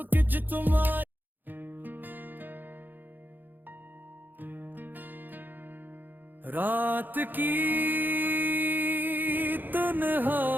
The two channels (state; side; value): late; left; 0.089 ms